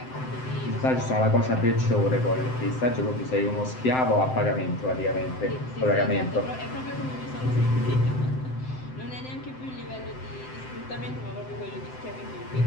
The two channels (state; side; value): late; right; 7.8 ms